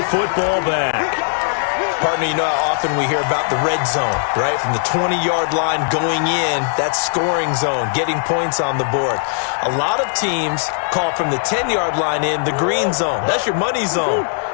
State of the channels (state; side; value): silent; right; digital silence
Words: football back. Partner, you know how often we hear about the red zone, right? From the 20-yard line going in, that's scoring zone, getting points on the board. A lot of teams call from the 10-yard line in the green zone. That's your money zone.